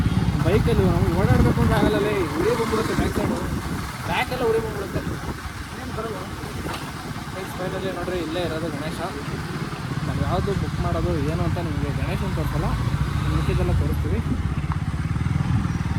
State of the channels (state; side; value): identical; both; correlation 1.00